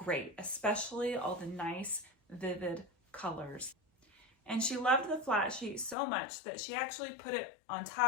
especially all the nice, vivid colors. And she loved the flat sheet so much that she actually put it on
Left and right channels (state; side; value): drops out; right; at 6.0 s